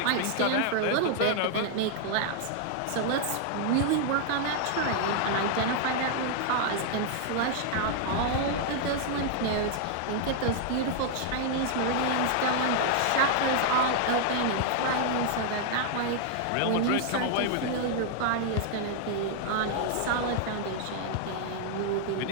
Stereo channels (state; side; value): different; both; correlation 0.00